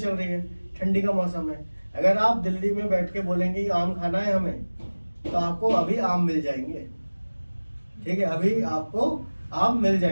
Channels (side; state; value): both; inverted; correlation -1.00